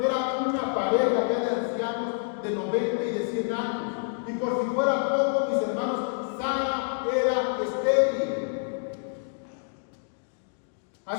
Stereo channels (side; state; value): right; silent; digital silence